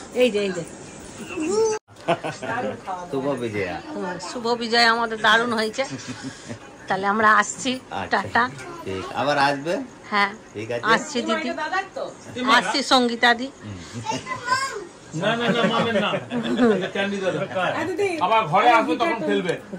এই যে এই যে শুভ বিজয়া শুভ বিজয় আমাদের দারুণ হয়েছে। তাহলে আমরা আসছি, টাটা। ঠিক আবার আসবে হ্যাঁ ঠিক আছে আসছি দিদি, দাদার তো আসছি সঙ্গীতা দি। না মামের না এটা ক্যান্ডি দাও দিদি আবার ঘরে আসবে তখন খেলবে,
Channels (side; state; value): both; identical; correlation 1.00